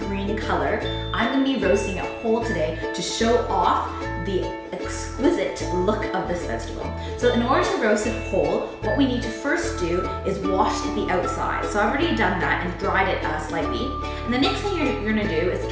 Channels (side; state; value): both; identical; correlation 1.00